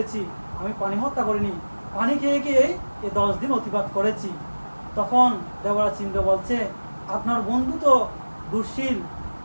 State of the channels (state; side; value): inverted; both; correlation -1.00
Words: আমি প্রাণী হত্যা করিনি, পানি খেয়ে খেয়ে এই 10 দিন অতিবাহিত করেছি। তখন দেবরাজ ইন্দ্র বলছে, আপনার বন্ধু তো দুঃশীল,